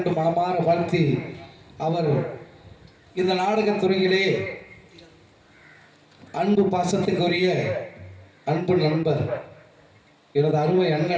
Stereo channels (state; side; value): identical; both; correlation 1.00